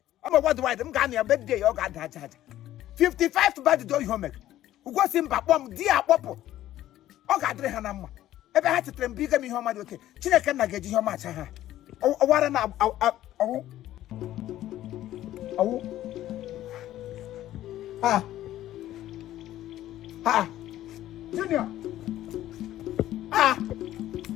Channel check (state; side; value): quieter; right; 13.5 dB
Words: I'm what do I do? I'm a birthday, you got that. 55 for bad day, you make. Who was in Papom, dear Popo? Oh, God, Hanama. Ever had to train bigger me home. Okay, China cannot get you much. Oh, what an Junior.